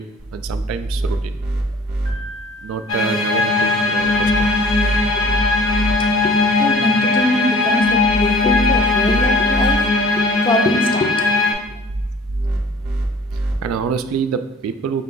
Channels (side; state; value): both; normal; correlation 0.50